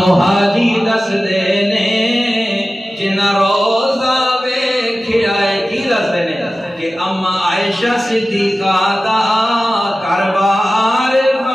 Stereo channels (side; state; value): both; normal; correlation 0.95